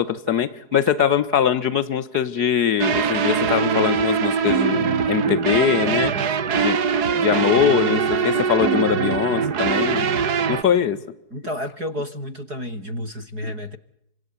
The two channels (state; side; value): late; left; 4.7 ms